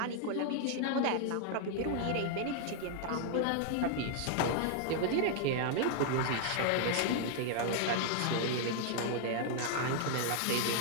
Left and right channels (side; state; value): both; different; correlation 0.00